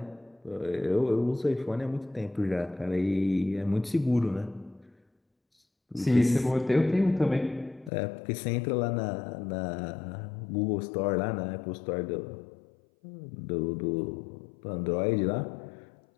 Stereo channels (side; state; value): right; drops out; at 7.9 s